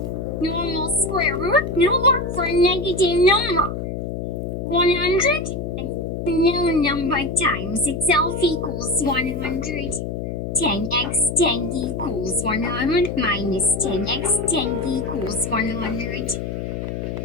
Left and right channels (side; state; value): left; noise; hum, 4 dB below the sound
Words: Normal square root no work for a negative number. 100 and no number times itself equals 100. 10x 10 equals 100 minus 10x 10 equals 100.